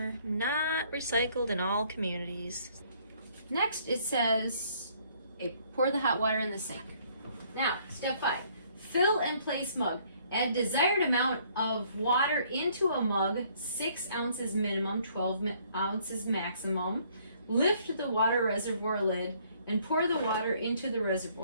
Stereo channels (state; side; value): inverted; both; correlation -0.63